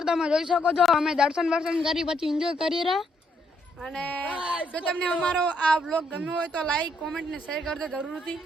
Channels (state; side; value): normal; both; correlation 0.73